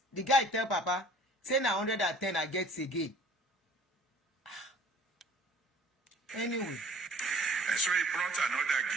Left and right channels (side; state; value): both; normal; correlation 0.51